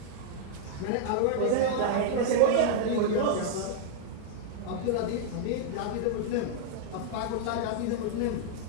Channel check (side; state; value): both; different; correlation -0.01